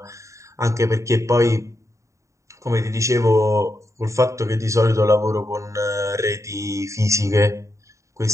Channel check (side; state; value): left; late; 0.15 ms